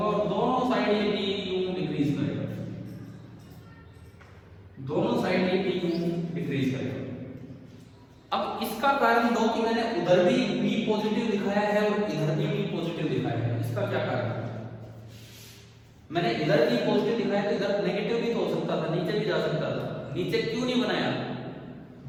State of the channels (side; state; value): both; identical; correlation 1.00